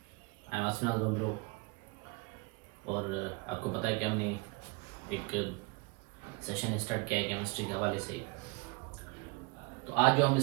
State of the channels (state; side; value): quieter; left; 28.8 dB